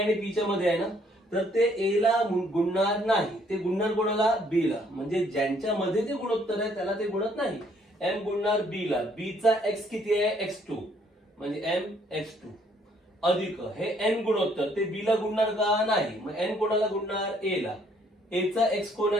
आणि पी च्या मध्ये आहे ना, तर ते ए ला गुणणार नाही, ते गुणणार कोणाला? बी ला. म्हणजे ज्यांच्या मध्ये ते गुणोत्तर आहे त्याला ते गुणत नाही. एम गुणणार बी ला. बी चा एक्स किती आहे? x2, म्हणजे एम x2 अधिक हे एन गुणोत्तर ते बी ला गुणणार का? नाही. मग एन कोणाला गुणणार? ए ला. ए चा एक्स कोण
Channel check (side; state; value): both; normal; correlation 0.65